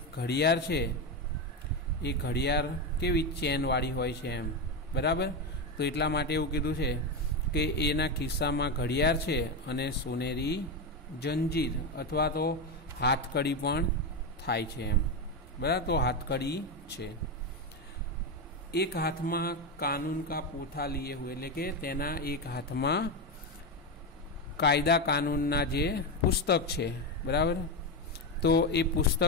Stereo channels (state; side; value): normal; both; correlation 0.12